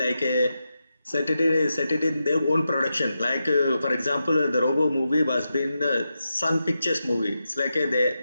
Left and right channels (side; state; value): both; inverted; correlation -0.89